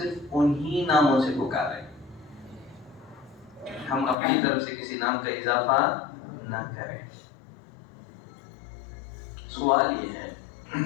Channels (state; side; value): drops out; right; at 4.2 s